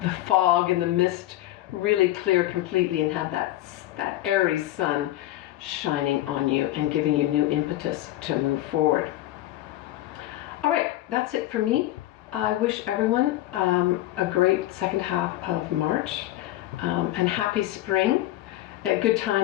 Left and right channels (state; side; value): quieter; right; 15.4 dB